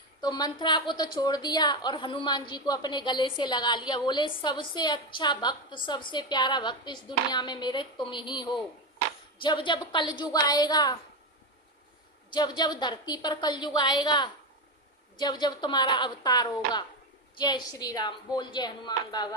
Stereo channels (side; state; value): both; normal; correlation 0.13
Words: तो मंथरा को तो छोड़ दिया और हनुमान जी को अपने गले से लगा लिया। बोले सबसे अच्छा भक्त, सबसे प्यारा भक्त इस दुनिया में मेरे तुम ही हो। जब जब कलयुग आएगा, जब जब धरती पर कलयुग आएगा, जब जब तुम्हारा अवतार होगा, जय श्री राम। बोल जय हनुमान